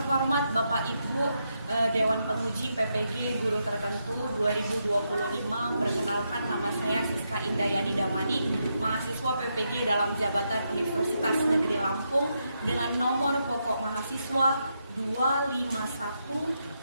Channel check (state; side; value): inverted; both; correlation -0.82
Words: Bapak Ibu Dewan Penguji PPG Guru Tertentu 2025, perkenalkan nama saya Siska Indayani Damani, mahasiswa PPG dalam jabatan Universitas Negeri Lampung dengan nomor pokok mahasiswa